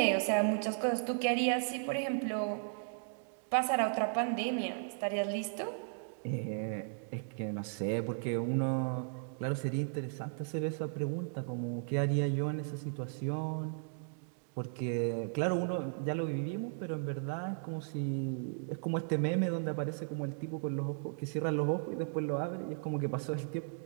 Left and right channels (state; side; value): silent; left; digital silence